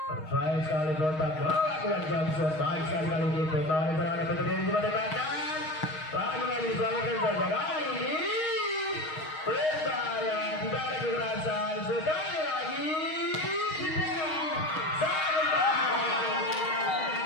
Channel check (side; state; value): right; late; 6.4 ms